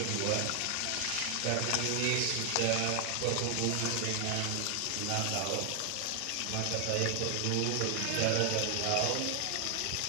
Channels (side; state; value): both; different; correlation 0.00